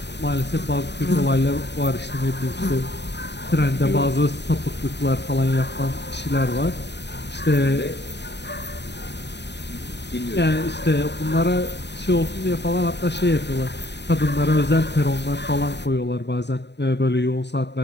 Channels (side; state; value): right; late; 0.50 ms